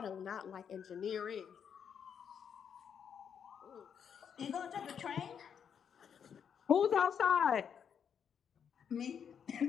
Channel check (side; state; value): right; quieter; 7.7 dB